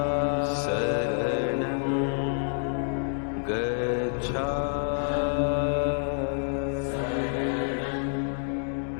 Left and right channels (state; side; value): silent; right; digital silence